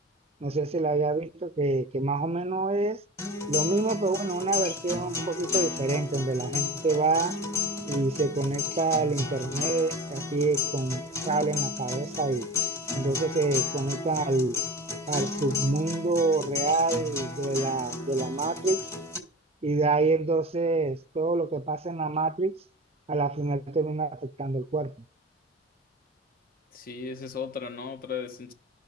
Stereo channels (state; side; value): normal; both; correlation 0.33